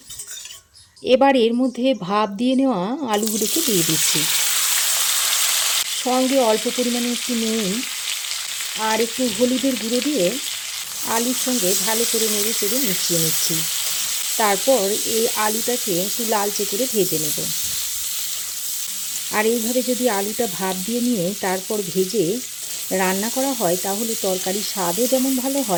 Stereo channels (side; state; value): both; identical; correlation 1.00